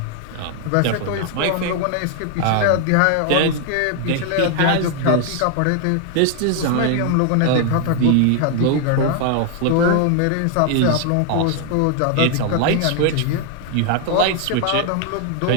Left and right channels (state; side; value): different; both; correlation 0.00